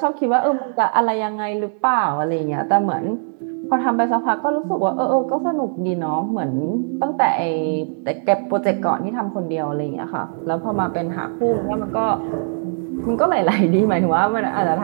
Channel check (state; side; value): silent; left; digital silence